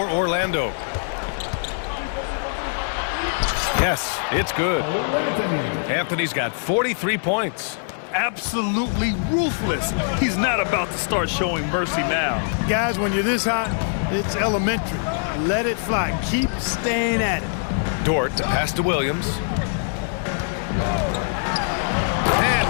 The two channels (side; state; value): right; silent; digital silence